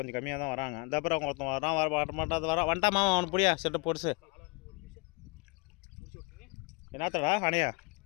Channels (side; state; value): right; quieter; 29.3 dB